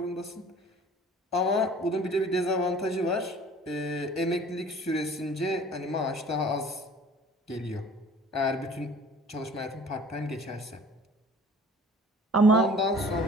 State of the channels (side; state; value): both; normal; correlation 0.48